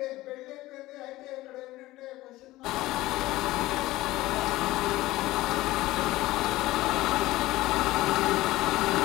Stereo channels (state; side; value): quieter; right; 17.6 dB